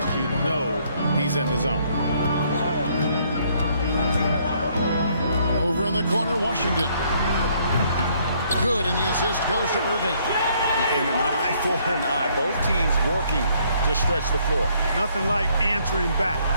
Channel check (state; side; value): inverted; both; correlation -0.67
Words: you know he's in the zone. Over in the corner, Washington. Good, and the assist goes to Irving. And an eye for an eye. Both teams working to stretch the floor. Nothing like answering back.